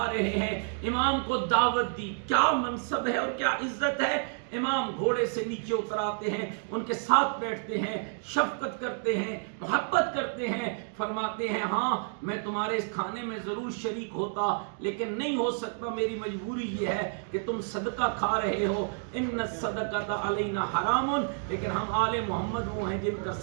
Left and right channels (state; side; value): silent; left; 58 dB below the other